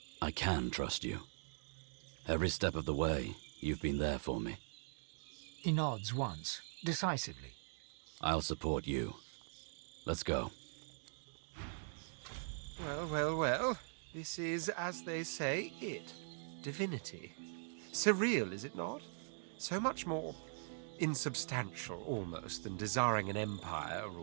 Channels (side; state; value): left; silent; digital silence